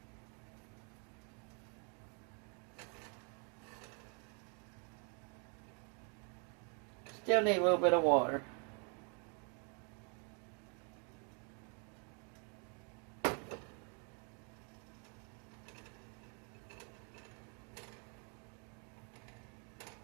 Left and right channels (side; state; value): left; quieter; 38.1 dB